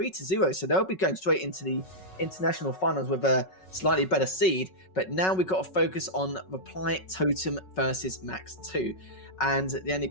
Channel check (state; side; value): late; right; 5.4 ms